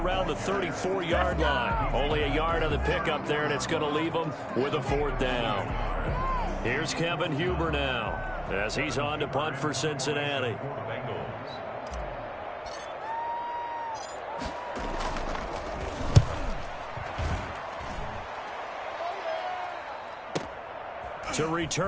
the 34-yard line. Only a yard on the pickup there, and it's going to leave him with a 4th down. Here's Kevin Huber now as he's on to punt for Cincinnati. To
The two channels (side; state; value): both; identical; correlation 1.00